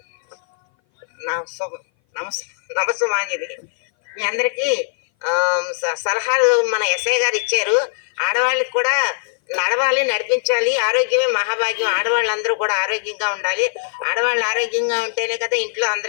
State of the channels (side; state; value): right; silent; 58 dB below the other